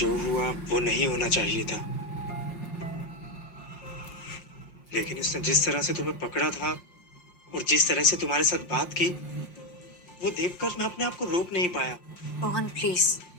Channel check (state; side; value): late; right; 5.7 ms